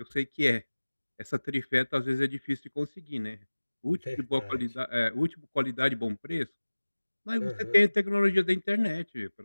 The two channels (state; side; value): inverted; both; correlation -1.00